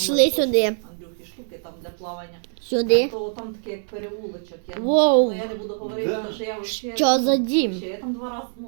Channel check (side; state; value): left; silent; digital silence